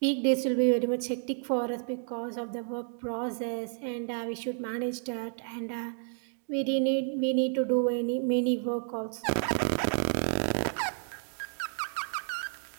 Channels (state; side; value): silent; left; 57 dB below the other